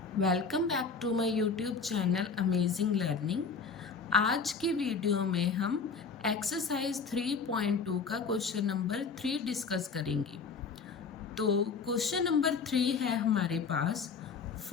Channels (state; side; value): quieter; right; 5.2 dB